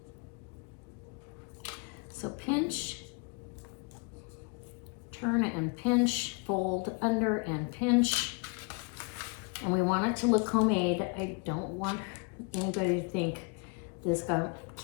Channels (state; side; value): quieter; right; 33.8 dB